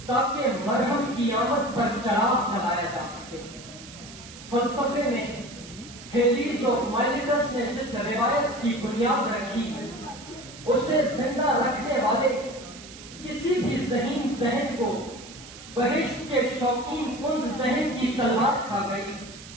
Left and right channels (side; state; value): right; noise; hiss, 16 dB below the sound